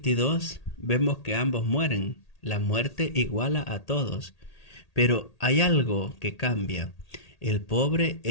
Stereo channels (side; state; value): right; late; 1.8 ms